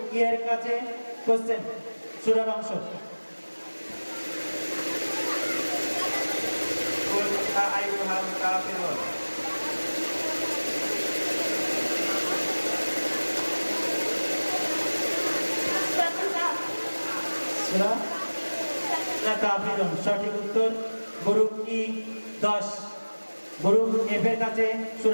ই এর কাছে কোশ্চেন, সূরার অংশ। কুল ইয়া আইয়ুহাল কাফিরুন। সূরাতুল কাহফ। সূরা কাফিরুন সঠিক উত্তর। গ্রুপ ই 10, গ্রুপ এফ এর কাছে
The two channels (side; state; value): both; inverted; correlation -1.00